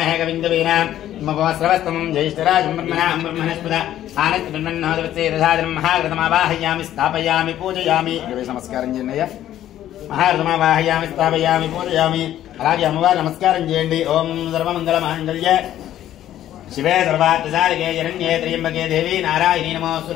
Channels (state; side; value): quieter; right; 12.2 dB